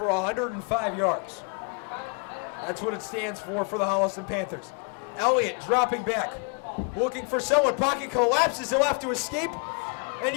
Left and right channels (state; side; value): quieter; right; 37.7 dB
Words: 105 yards. That's what it stands for the Holliston Panthers. Elliott dropping back, looking for someone. Pocket collapses. He'll have to escape and